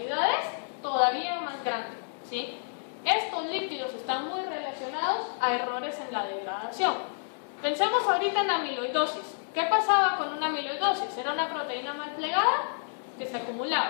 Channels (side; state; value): right; silent; 58 dB below the other